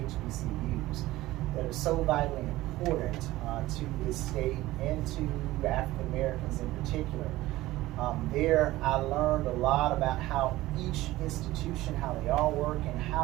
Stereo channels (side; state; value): left; quieter; 17.2 dB